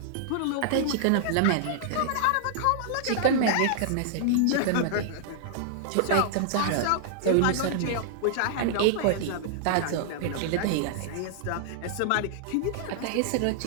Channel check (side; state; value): both; different; correlation -0.01